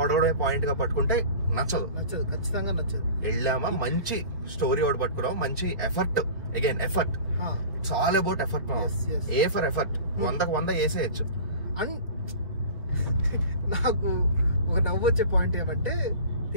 పాయింట్ గా పట్టుకుంటే నచ్చదు, ఖచ్చితంగా నచ్చదు. వెళ్ళామా మంచి స్టోరీ ఒకటి పట్టుకున్నాం, మంచి effort, again effort, it's all about effort. A for effort 100కు 100 వేసేయచ్చు. అండ్ నాకు ఒక నవ్వు వచ్చే పాయింట్ ఏమంటే,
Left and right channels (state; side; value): inverted; both; correlation -0.38